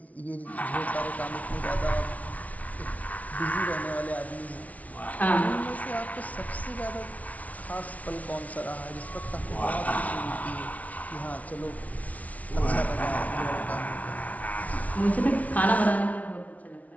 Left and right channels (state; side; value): late; right; 0.069 ms